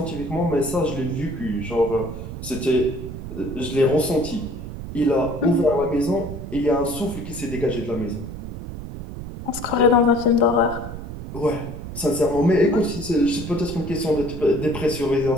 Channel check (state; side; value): noise; right; rumble, 9 dB below the sound